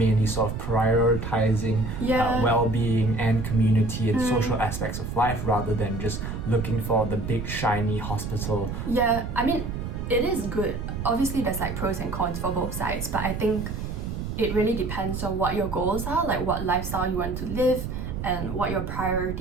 sort of prioritizing well-being and community and social aspects of life, rather than just looking for the big shiny hospital. Yeah, I mean, it is good. Obviously there's like pros and cons for both sides, but I think it really depends on what your goals are, like what lifestyle you want to live and what your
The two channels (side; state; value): right; noise; rumble, 5 dB below the sound